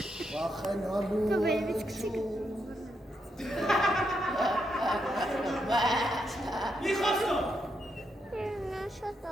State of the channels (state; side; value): normal; both; correlation 0.81